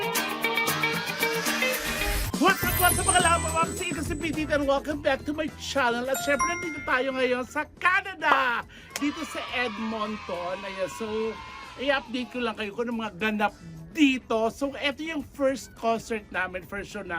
What's up mga lama, ma'am? Sige kasi Petit and welcome back to my channel. At syempre nandito tayo ngayon sa Canada, dito sa Edmonton. Ayan, so i-update ko lang kayo kung ano mga ganap dito. So ito yung first concert namin, first show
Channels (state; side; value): identical; both; correlation 1.00